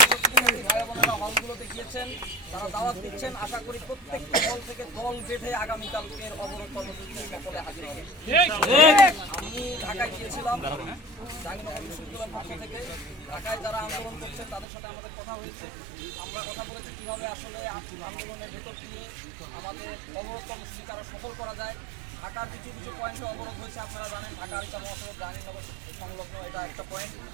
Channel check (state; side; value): drops out; left; at 14.7 s